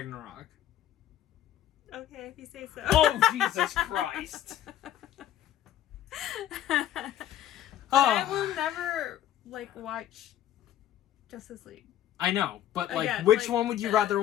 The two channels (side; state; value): right; quieter; 11.7 dB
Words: Okay, if you say so. Oh, Jesus Christ. I will never, like, watch Justice League. I know, but, like, Again, which like, one would you rather